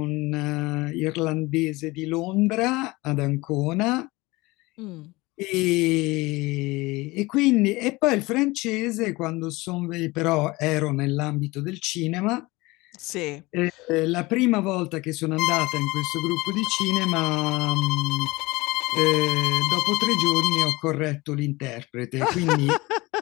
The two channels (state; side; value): quieter; right; 21.9 dB